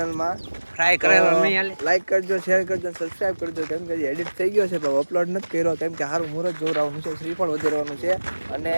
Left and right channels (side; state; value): both; inverted; correlation -1.00